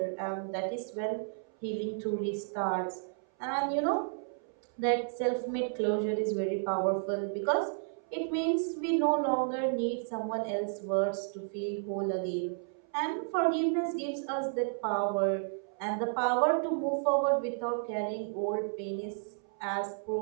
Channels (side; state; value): left; silent; 56 dB below the other